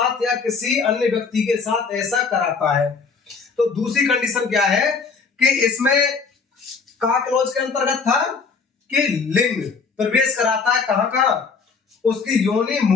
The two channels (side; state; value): right; quieter; 5.1 dB